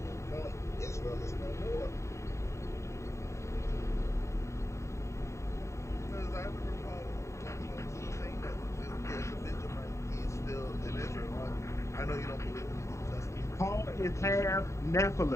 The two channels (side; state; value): right; late; 0.14 ms